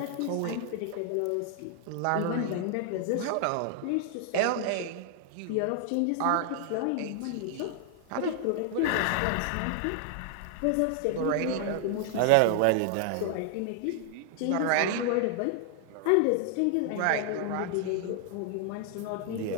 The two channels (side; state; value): both; different; correlation 0.00